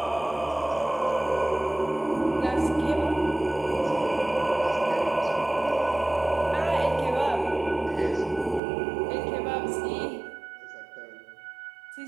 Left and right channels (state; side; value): drops out; left; at 8.6 s